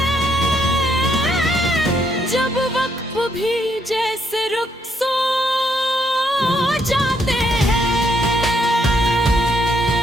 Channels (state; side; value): normal; both; correlation 0.73